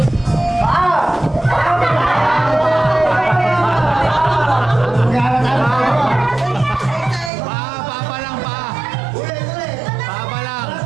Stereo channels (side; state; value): left; drops out; at 7.3 s